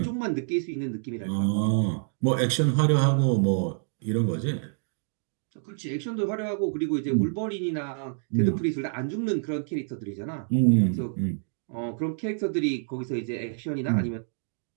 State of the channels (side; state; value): left; silent; digital silence